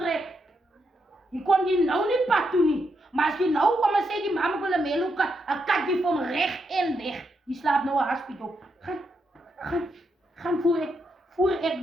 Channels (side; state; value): both; normal; correlation 0.81